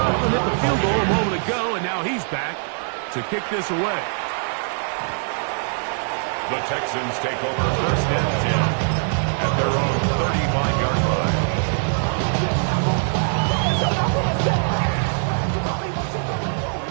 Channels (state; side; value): silent; left; 64 dB below the other